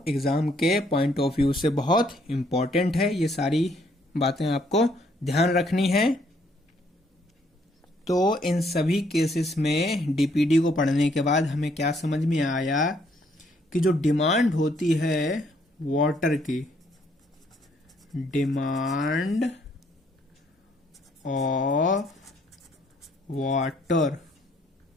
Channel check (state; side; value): normal; both; correlation 0.68